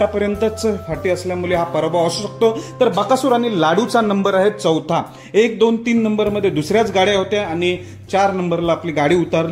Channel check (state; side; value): identical; both; correlation 1.00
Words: फाटी असल्यामुळे हा पराभव असू शकतो. तर बकासूर आणि लाडूचा नंबर आहे चौथा. 1, 2, 3 नंबरमध्ये दुसऱ्याच गाड्या होत्या आणि 4 नंबरला आपली गाडी